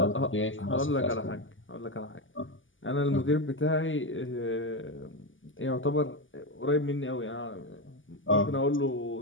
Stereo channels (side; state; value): right; late; 0.57 ms